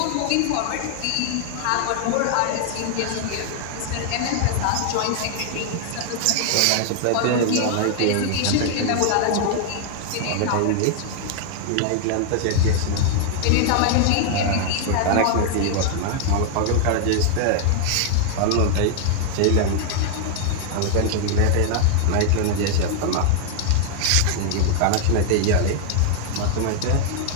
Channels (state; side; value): different; both; correlation 0.00